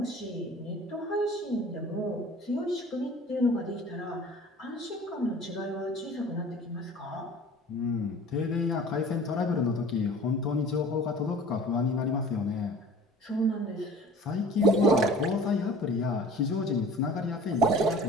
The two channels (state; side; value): normal; both; correlation 0.44